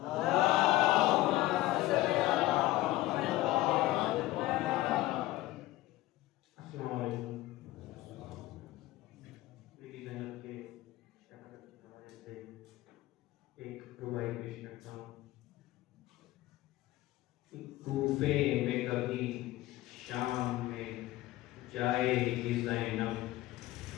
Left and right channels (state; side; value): quieter; right; 16.8 dB